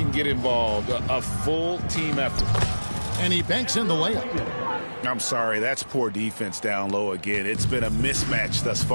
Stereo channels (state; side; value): inverted; both; correlation -1.00